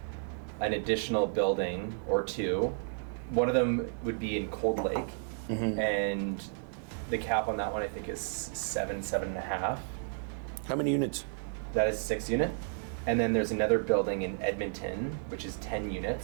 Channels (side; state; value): left; silent; digital silence